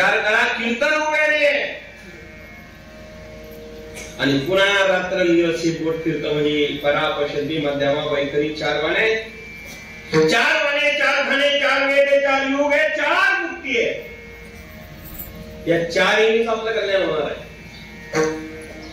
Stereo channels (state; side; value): identical; both; correlation 1.00